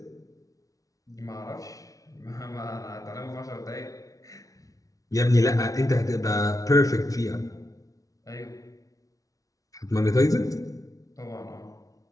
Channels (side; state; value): right; late; 0.17 ms